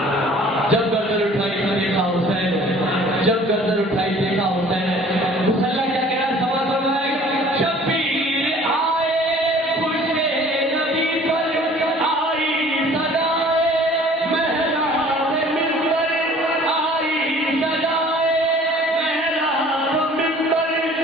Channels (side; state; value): both; normal; correlation 0.51